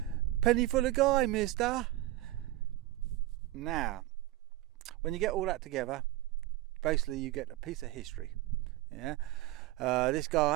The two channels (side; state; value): left; quieter; 16.7 dB